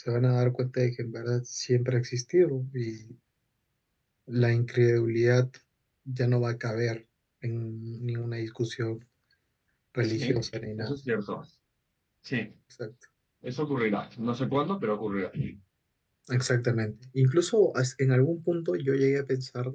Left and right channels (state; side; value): identical; both; correlation 1.00